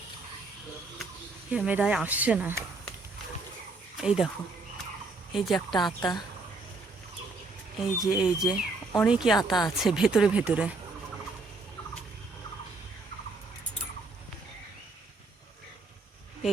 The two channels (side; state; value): left; quieter; 3.5 dB